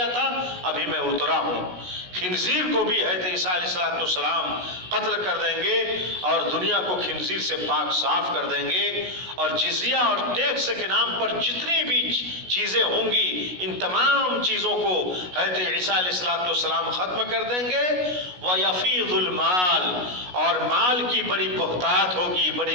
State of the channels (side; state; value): left; late; 16 ms